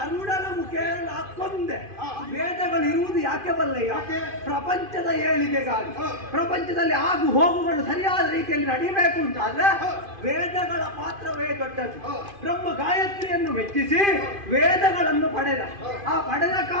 ಮುಖೇನ ಹಾಕೊಂಡೆ. ವೇದಗಳಿರುವುದು ಯಾಕೆ ಬಲ್ಲಯ್ಯ? ಪ್ರಪಂಚದ ಏಳಿಗೆಗಾಗಿ. ಪ್ರಪಂಚದಲ್ಲಿ ಆಗು ಹೋಗುಗಳು ಸರಿಯಾದ ರೀತಿಯಲ್ಲಿ ನಡೀಬೇಕು ಅಂತಾದ್ರೆ ವೇದಗಳ ಪಾತ್ರವೇ ದೊಡ್ಡದು. ಬ್ರಹ್ಮ ಗಾಯತ್ರಿಯನ್ನು ಮೆಚ್ಚಿಸಿ ವೇದಗಳನ್ನು ಪಡೆದ. ಆ ಪಡೆದ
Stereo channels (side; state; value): left; late; 2.5 ms